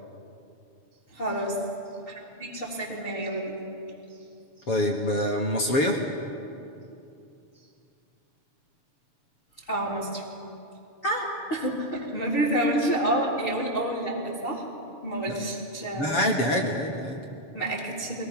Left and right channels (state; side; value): late; right; 7.1 ms